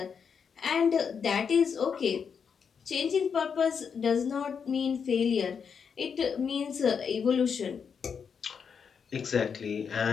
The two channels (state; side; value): quieter; right; 6.6 dB